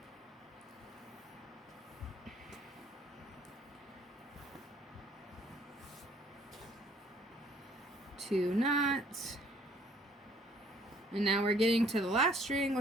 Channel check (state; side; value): normal; both; correlation 0.60